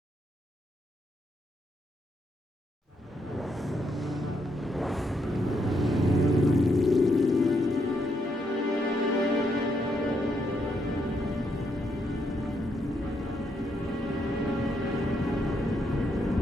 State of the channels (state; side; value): normal; both; correlation 0.77